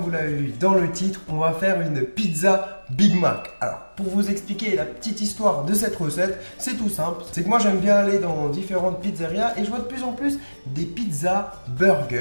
l'avez vu dans le titre, on va faire une pizza Big Mac. Alors, pour vous expliquer la petite histoire de cette recette, c'est tout simple. C'est que moi j'aime bien aller dans différentes pizzerias et je vois de plus en plus des pizzas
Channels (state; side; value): inverted; both; correlation -1.00